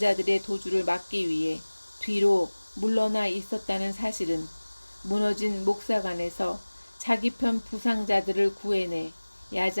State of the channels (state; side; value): inverted; both; correlation -1.00